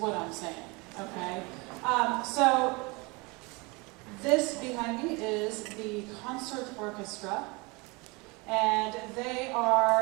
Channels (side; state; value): left; quieter; 26.9 dB